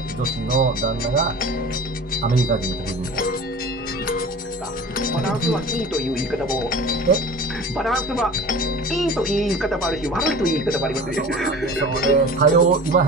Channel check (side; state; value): both; normal; correlation 0.39